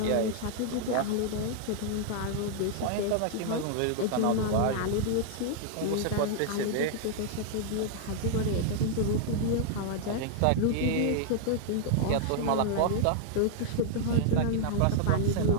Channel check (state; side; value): different; both; correlation 0.00